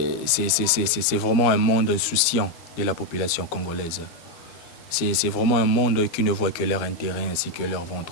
C'est vraiment un monde insouciant de la population congolaise. C'est vraiment un monde qui ne voit que leur intérêt ainsi que leur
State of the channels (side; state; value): right; late; 12 ms